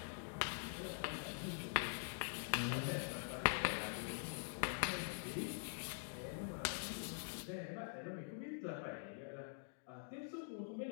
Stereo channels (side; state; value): right; silent; digital silence